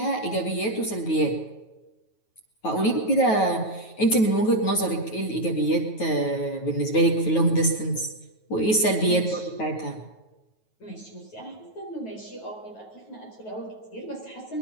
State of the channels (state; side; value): late; right; 9.3 ms